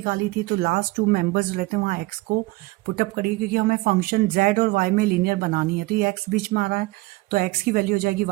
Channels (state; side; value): quieter; left; 21.5 dB